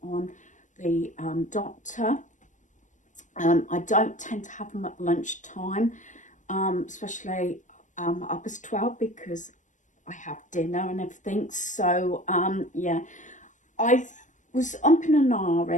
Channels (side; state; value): right; late; 0.36 ms